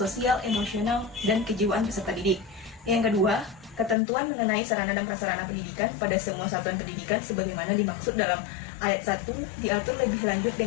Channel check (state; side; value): drops out; right; at 4.0 s